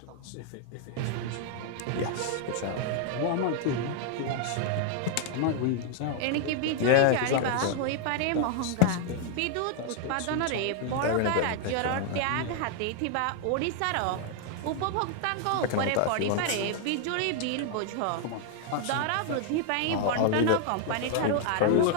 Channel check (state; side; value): different; both; correlation 0.00